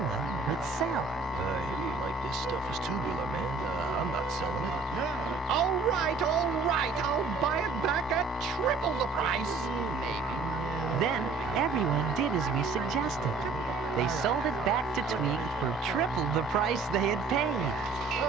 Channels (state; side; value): quieter; left; 4.2 dB